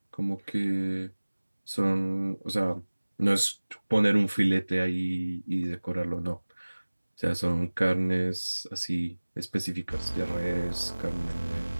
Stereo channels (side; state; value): both; inverted; correlation -1.00